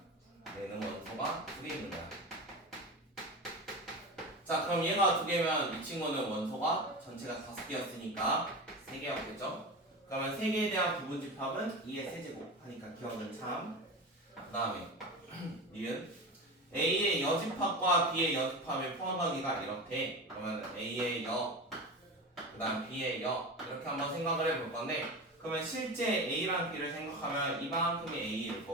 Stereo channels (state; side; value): normal; both; correlation 0.27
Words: 얘는 원소가 2개 있는 거야. 자, 그럼 얘가 2개면 이 친구는 원소가 전체가 5개였으니까 3개였겠죠? 그러면 3개에 대한 부분 집합은 2의 세제곱 하니까 기억은 참. 그 다음에 니은 A의 여집합과 B의 여집합의 포함하기가 이렇대. 그러면 A의 여, 그 다음 B의 여 이렇게 한번 생각을 해볼 건데, 그러면 실제 A랑 B를 생각하면 이만큼이 A일